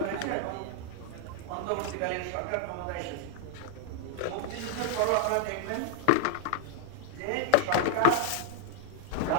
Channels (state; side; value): different; both; correlation 0.00